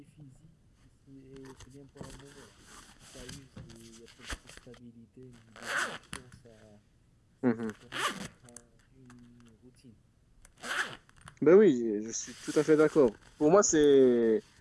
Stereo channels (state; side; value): identical; both; correlation 1.00